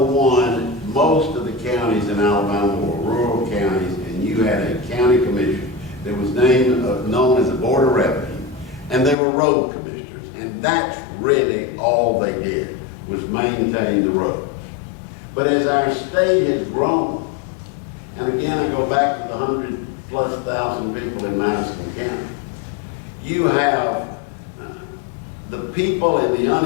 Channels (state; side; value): drops out; right; at 9.2 s